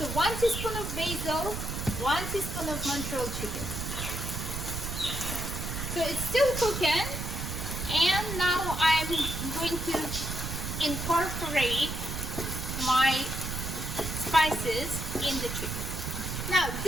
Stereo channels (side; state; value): right; noise; rumble, 4 dB below the sound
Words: So 1 teaspoon of basil, 1 teaspoon of Montreal chicken. So it's still cooking, and now I'm going to incorporate my spices in the chicken. Now